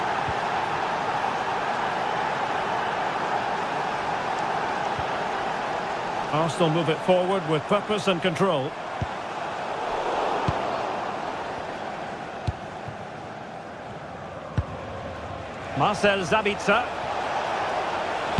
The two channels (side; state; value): both; identical; correlation 1.00